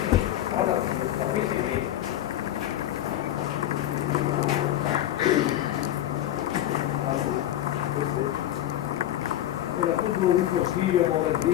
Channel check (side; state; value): right; quieter; 12.7 dB